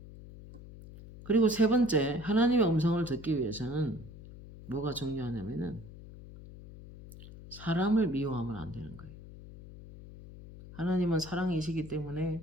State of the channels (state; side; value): noise; left; hum, 16 dB below the sound